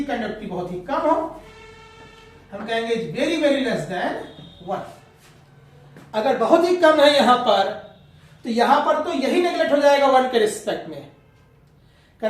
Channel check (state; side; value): identical; both; correlation 1.00